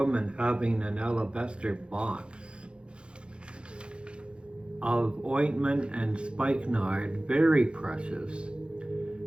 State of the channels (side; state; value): left; late; 0.056 ms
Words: having an alabaster box of ointment and spikenard, very precious.